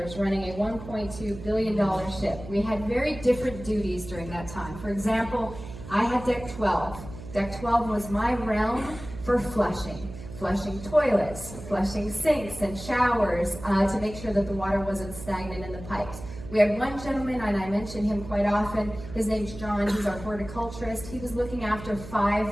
running a $1.2 billion ship. We had very different duties during that time. For example, I had deck 12. Deck 12 was my realm for flushing toilets, flushing sinks and showers to make sure that the water wasn't stagnant in the pipes. We had one gentleman, and I mention him quite often. His name's John. He's our horticulturist. He was looking after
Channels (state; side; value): noise; right; hum, 13 dB below the sound